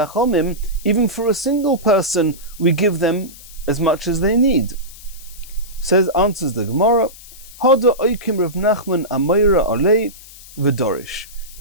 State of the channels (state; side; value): noise; left; hiss, 19 dB below the sound